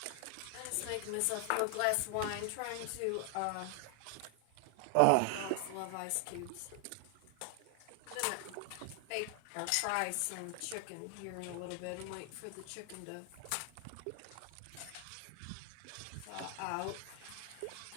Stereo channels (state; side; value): different; both; correlation 0.00